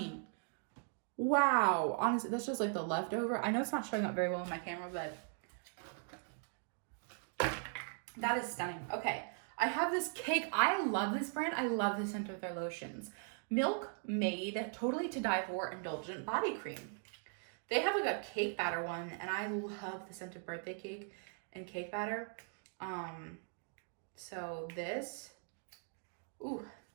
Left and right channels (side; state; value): left; silent; 51 dB below the other